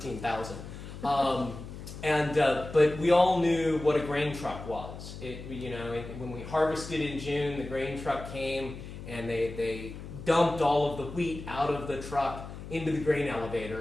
But we all knew what a grain truck was. When we harvested in June, the grain truck came and they dumped all of the wheat out of the truck into the grain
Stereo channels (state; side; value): noise; left; hum, 11 dB below the sound